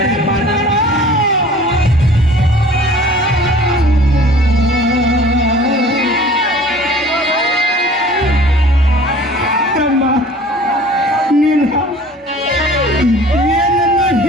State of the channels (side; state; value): both; normal; correlation 0.48